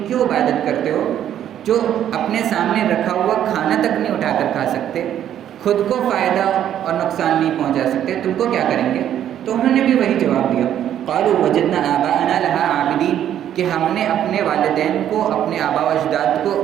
کیوں عبادت کرتے ہو جو اپنے سامنے رکھا ہوا کھانا تک نہیں اٹھا کر کھا سکتے, خود کو فائدہ اور نقصان نہیں پہنچا سکتے, تم کو کیا کریں گے؟ تو انہوں نے بھی وہی جواب دیا, قالوا وجدنا آباءنا لها عابدین, کہ ہم نے اپنے والدین کو, اپنے آباء و اجداد کو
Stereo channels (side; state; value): left; quieter; 10.6 dB